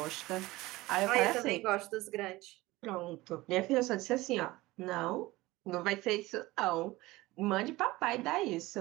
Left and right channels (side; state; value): left; quieter; 19.4 dB